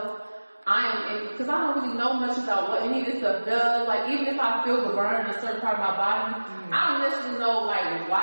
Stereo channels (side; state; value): both; inverted; correlation -1.00